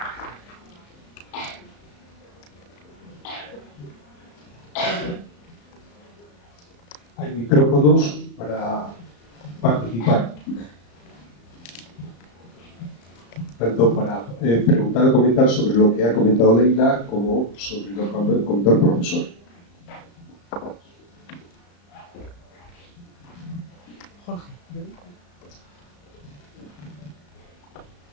Hay micrófonos para participar. Tanto para preguntar o comentar sobre lo que ha comentado Leila como sobre lo que comentó el profesor. Jorge.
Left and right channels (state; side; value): late; right; 34 ms